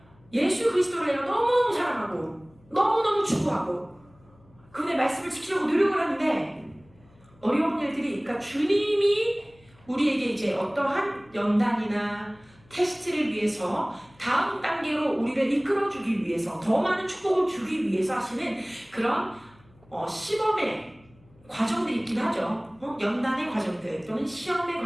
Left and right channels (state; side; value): noise; left; hum, 29 dB below the sound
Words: 예수 그리스도를 내가 너무너무 사랑하고 너무너무 추구하고 그분의 말씀을 지키려고 노력을 하는데 어려운 일들이, 그러니까 주님이 우리에게 이제 어떠한 연단이나 테스트를 위해서 다음 단계로 우리를 이끌어주기 위해서 더 많은 축복을 주기 위해서 하시는 그런 시범의 과정들이 있긴 하죠. 연단의 과정들 또는 시험의